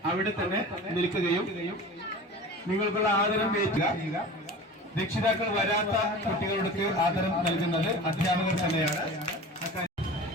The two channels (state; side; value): normal; both; correlation 0.37